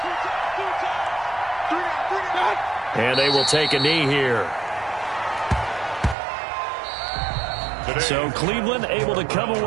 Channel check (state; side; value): drops out; left; at 6.2 s